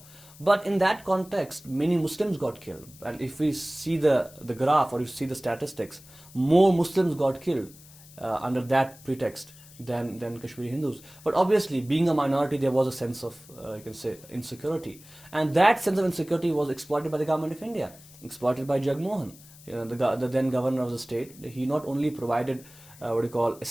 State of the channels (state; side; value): noise; left; hiss, 22 dB below the sound